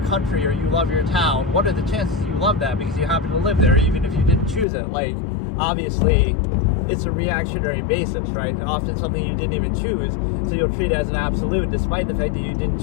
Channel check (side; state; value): right; drops out; at 4.7 s